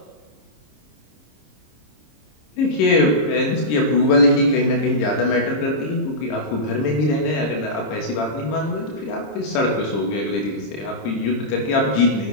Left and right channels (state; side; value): late; right; 26 ms